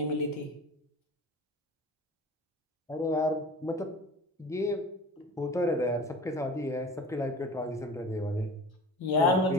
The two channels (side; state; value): both; normal; correlation 0.37